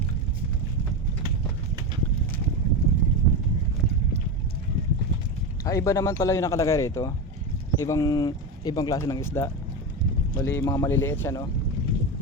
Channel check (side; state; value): both; normal; correlation 0.17